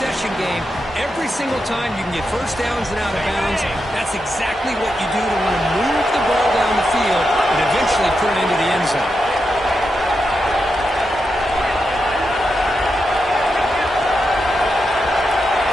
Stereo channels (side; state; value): both; normal; correlation 0.86